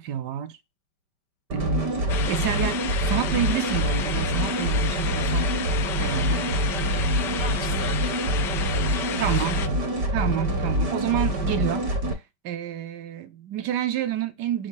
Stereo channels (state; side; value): late; left; 5.1 ms